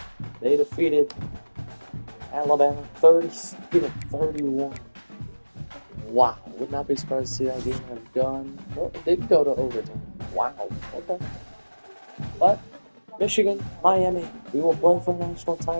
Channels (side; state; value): both; inverted; correlation -1.00